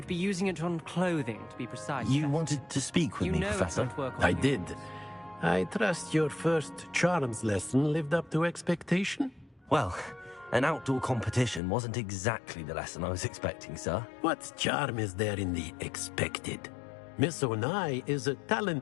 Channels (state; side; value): drops out; right; at 11.6 s